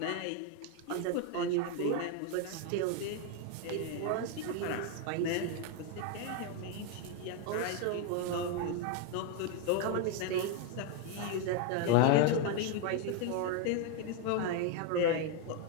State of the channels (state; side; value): different; both; correlation 0.01